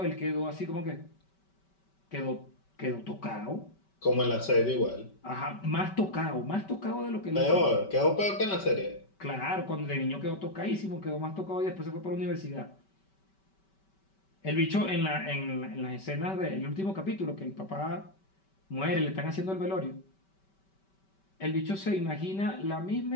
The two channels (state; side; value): late; right; 5.2 ms